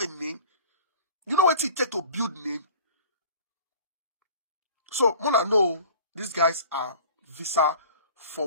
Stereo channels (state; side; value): inverted; both; correlation -0.44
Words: name? You know what it takes to build name? So Mona know these guys are visa